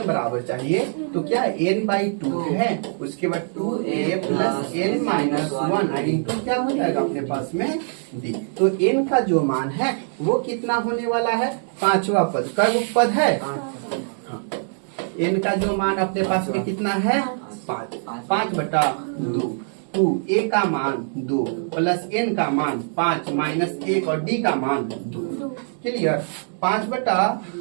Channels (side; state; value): left; silent; digital silence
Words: बराबर चाहिए तो क्या n/2 है, उसके बाद 2a plus n minus 1 into क्या हो जाएगा अपने पास में d। तो n का जो मान है वो कितना होने वाला है 5वां पद। कब पद है n का जो मान अपने पास में कितना है 5/2, 2 a का मान 2 प्लस n का मान 5 माइनस 1 और d का मान 2। क्लियर,